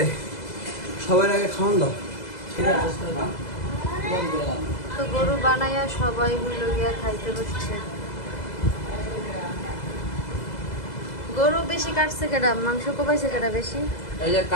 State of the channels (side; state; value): right; late; 2.0 ms